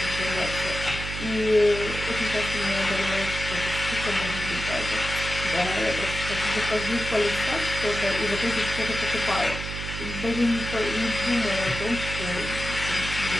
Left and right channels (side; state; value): right; noise; hum, 7 dB below the sound